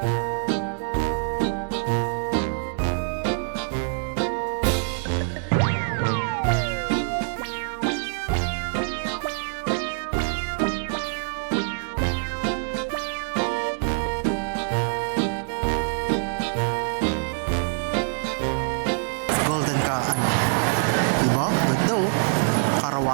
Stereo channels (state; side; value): silent; left; 62 dB below the other